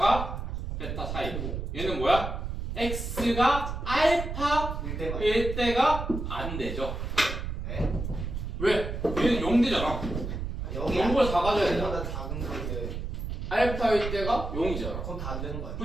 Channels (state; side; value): noise; right; rumble, 5 dB below the sound